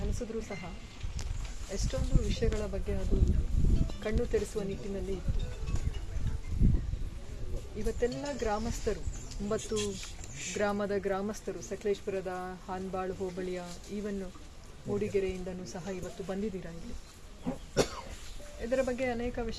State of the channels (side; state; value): both; identical; correlation 1.00